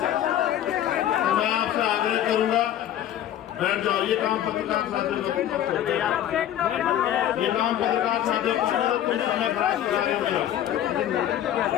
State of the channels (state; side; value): quieter; right; 11.4 dB